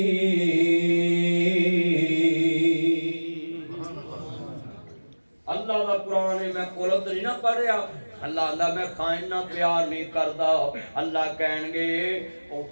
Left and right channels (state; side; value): inverted; both; correlation -1.00